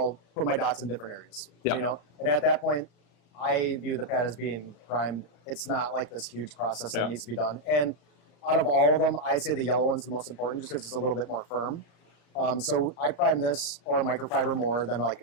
put my dots in different areas. You know, and at that point, I view the pad as being primed. It's not like this huge process that needs to be done. And out of all of them, I'd say the yellow one's the most important just because it's a little bit more firm. So I prime this or a microfiber more than, like,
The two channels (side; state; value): right; late; 35 ms